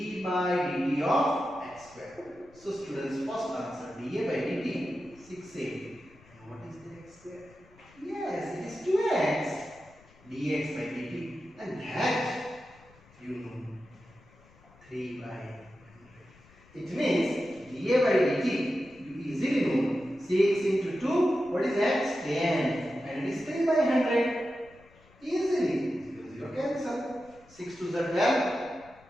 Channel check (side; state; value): left; noise; rumble, 27 dB below the sound